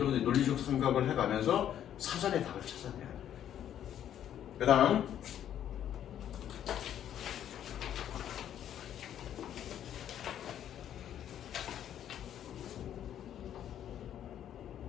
논리적 생각을 해가면서 사전에 답을 찾아내야 돼. 그 다음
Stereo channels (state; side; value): quieter; right; 10.4 dB